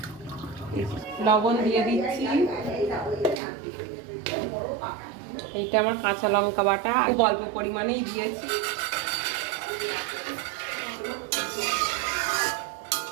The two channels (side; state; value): left; drops out; at 3.4 s